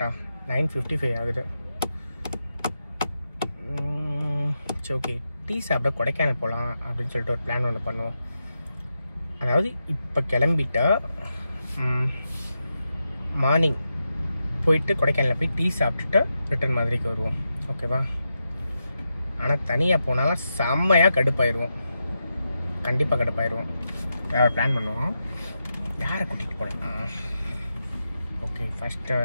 9:55 ஆகுது. சரி ஓகே, டீ சாப்பிட கொடைக்கானல் போகலாம் அப்படின்னு சொல்லிட்டு ஒரு பிளான் ஒன்று பண்ணுவோம். அதாவது இப்போ கிளம்பிட்டா மார்னிங் போயிட்டு கொடைக்கானலில் போய் டீ சாப்பிட்டுட்டு ரிட்டர்ன் மாதிரிக்கு வருவோம். ஓகேவா? ஆனால் தனியாக போனாலும் செம்மையாக கடுப்பாயிடுவோம். கண்டிப்பாக கடுப்பாயிடுவோம். வேறு பிளான் பண்ணுவோம். யாரை கூட்டிகிட்டு போகலாம்? ஓகே, ஃபஸ்ட்டு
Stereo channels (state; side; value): inverted; both; correlation -0.87